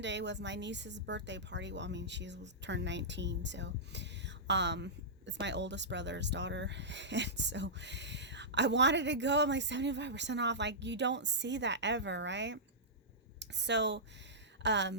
was my niece's birthday party. Well, I mean, she turned 19, so it's my oldest brother's daughter. And so I wanted to go. I'm like, 75% off. Like, you don't see that ever, right? So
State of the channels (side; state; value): both; normal; correlation -0.15